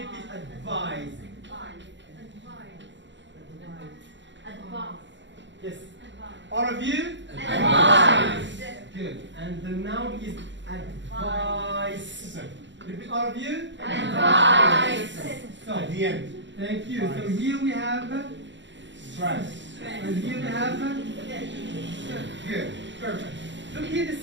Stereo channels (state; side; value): late; left; 0.53 ms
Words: advise? Yes. All of you? Advise. Good. And the noun is advice. Repeat all of you? Advice. So, At the end. thank you. So here we have, Stress. and here we have, good. Perfect. Look here, the